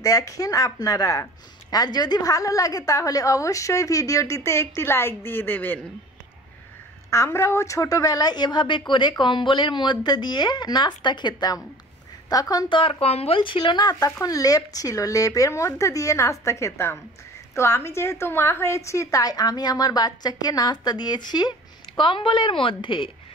দেখেন আপনারা। আর যদি ভালো লাগে তাহলে অবশ্যই ভিডিওটিতে একটি লাইক দিয়ে দেবেন। আমরাও ছোটবেলায় এভাবে করে কম্বলের মধ্যে দিয়ে নাস্তা খেতাম। তখন তো আর কম্বল ছিল না, তখন লেপ ছিল, লেপের মধ্যে দিয়ে নাস্তা খেতাম। তো আমি যেহেতু মা হয়েছি তাই আমি আমার বাচ্চাকে নাস্তা দিয়েছি কম্বলের মধ্যে।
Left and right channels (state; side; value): normal; both; correlation 0.43